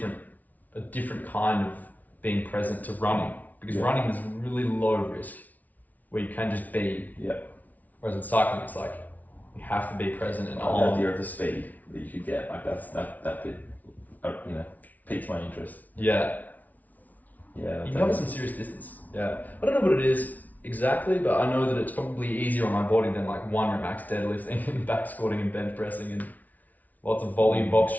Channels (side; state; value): right; late; 0.076 ms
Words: kind of being present to running. because Yeah. running is really low risk, where you can just be. Yeah. Whereas in cycling, it's like you have to be present and The on. idea of the speed that you could get, like that bit, piques my interest. Yeah, Yeah. you can cover some serious distance. Yeah, I don't know what it is exactly, but I know that it's probably easier on my body than like 1 rep max deadlifting and back squatting and bench pressing and lots of volume box